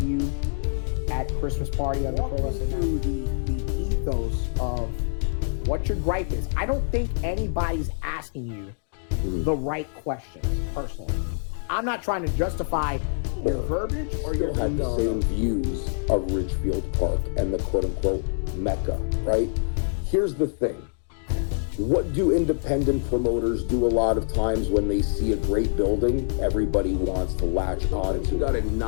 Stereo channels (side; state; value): right; silent; digital silence